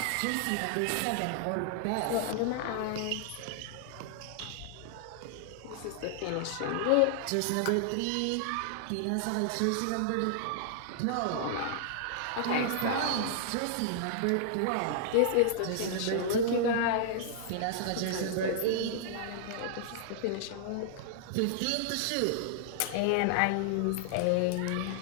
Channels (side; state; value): both; different; correlation -0.01